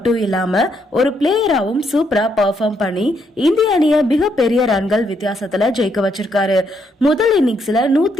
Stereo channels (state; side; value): normal; both; correlation 0.75